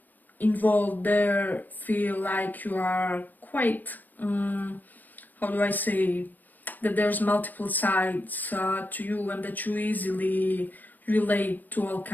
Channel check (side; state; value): right; late; 0.085 ms